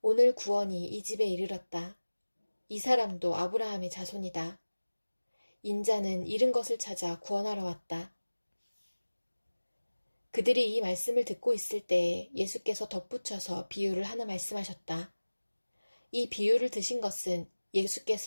오늘 구원이 이 집에 이르렀다. 이 사람도 아브라함의 자손이다. 인자는 잃은 것을 찾아 구원하러 왔다. 그들이 이 말씀을 듣고 있을 때에 예수께서 덧붙여서 비유를 하나 말씀하셨다. 이 비유를 드신 것은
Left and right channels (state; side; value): inverted; both; correlation -1.00